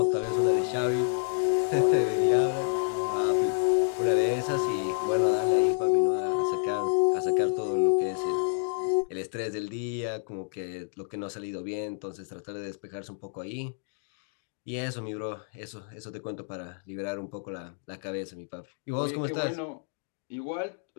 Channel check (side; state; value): right; silent; 59 dB below the other